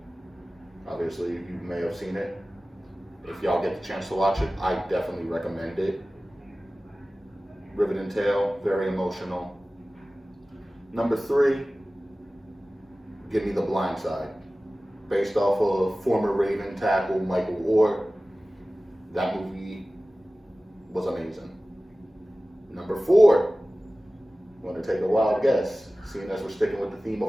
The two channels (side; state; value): both; normal; correlation 0.97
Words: obviously you may have seen it. If y'all get the chance to watch it, I definitely recommend it. Riveting tale, very emotional. Number 3, give me The Blind Side. Based off of former Raven tackle Michael Orr. That movie was amazing. Number 4, I'm going to take a wild guess, seeing as we're sticking with the theme of